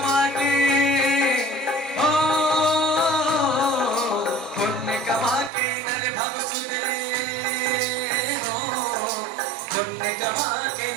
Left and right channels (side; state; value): left; drops out; at 5.5 s